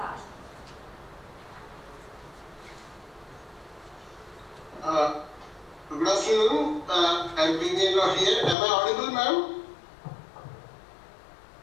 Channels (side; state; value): right; drops out; at 8.6 s